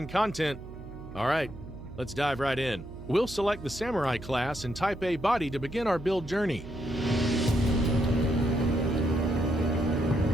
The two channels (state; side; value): noise; right; hum, 14 dB below the sound